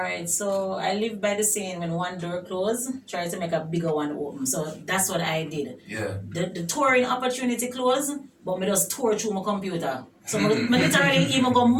so I live by the saying, when one door closed, try to make a bigger one open. So that's what I did. Yeah. The touring opportunity closed, but me just tour through my computer. So me literally even go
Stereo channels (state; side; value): identical; both; correlation 1.00